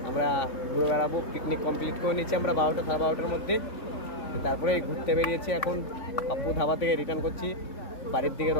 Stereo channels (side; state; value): right; late; 3.5 ms